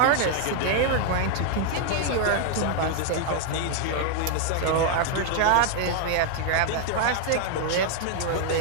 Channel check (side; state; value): both; different; correlation 0.00